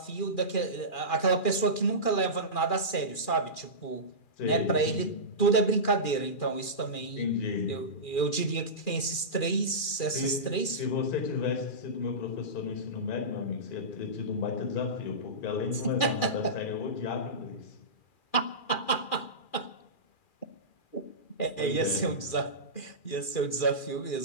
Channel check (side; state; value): right; late; 2.4 ms